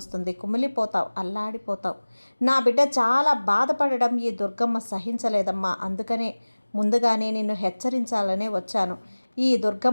కుమిలిపోతావు, అల్లాడిపోతావు. నా బిడ్డ చాలా బాధపడడం ఈ దుర్గమ్మ సహించలేదమ్మా. అందుకనే ముందుగానే నిన్ను హెచ్చరించాలనే వచ్చాను. ఈ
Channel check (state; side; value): inverted; both; correlation -1.00